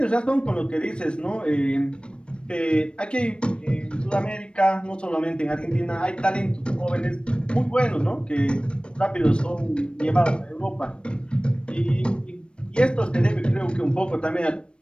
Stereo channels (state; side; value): late; right; 0.056 ms